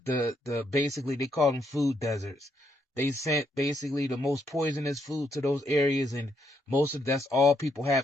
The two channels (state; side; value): normal; both; correlation 0.76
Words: basically, they call them food deserts. They sent basically the most poisonous food to those areas, and that's all people